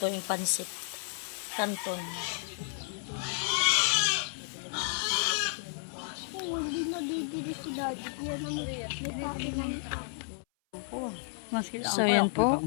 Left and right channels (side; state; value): right; silent; 56 dB below the other